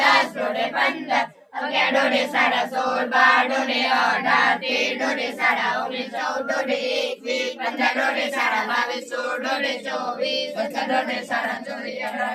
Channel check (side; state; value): both; identical; correlation 1.00